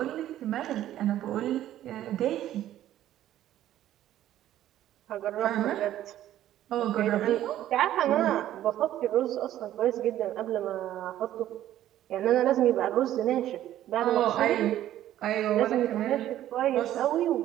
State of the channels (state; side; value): quieter; left; 12.7 dB